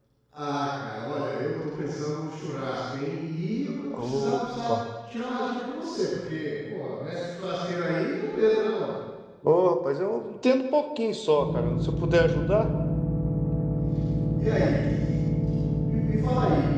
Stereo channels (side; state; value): both; identical; correlation 1.00